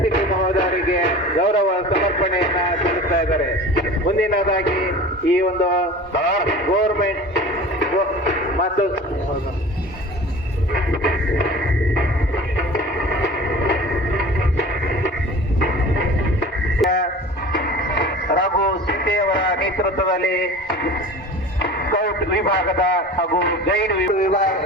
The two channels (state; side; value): normal; both; correlation 0.39